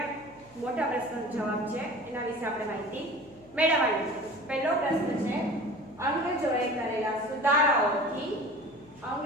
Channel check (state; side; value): noise; left; hum, 28 dB below the sound